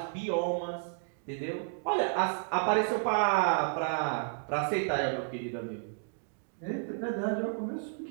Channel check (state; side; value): silent; left; digital silence